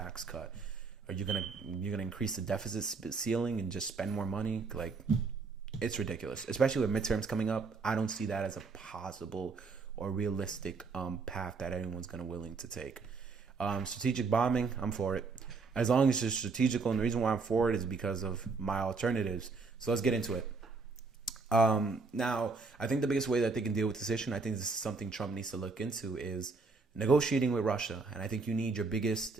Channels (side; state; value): left; quieter; 4.4 dB